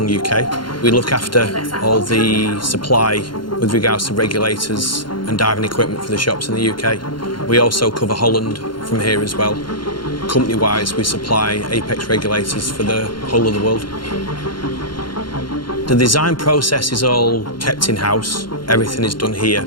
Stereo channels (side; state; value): right; late; 0.72 ms